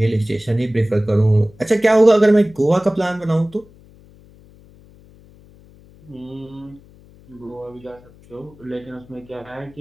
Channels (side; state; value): left; noise; hum, 25 dB below the sound